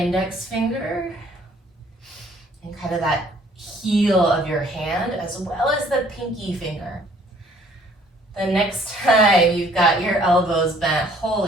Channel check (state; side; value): normal; both; correlation 0.59